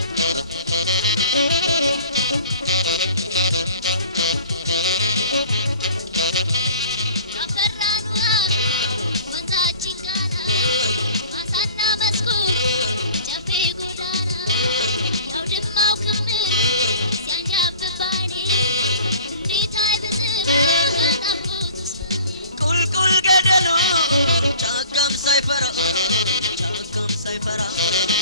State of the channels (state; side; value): inverted; both; correlation -0.47